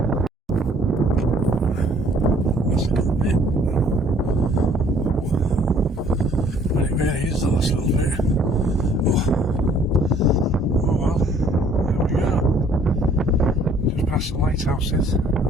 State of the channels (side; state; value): both; normal; correlation 0.59